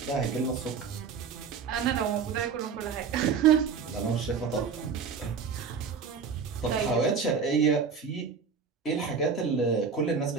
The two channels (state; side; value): quieter; left; 5.9 dB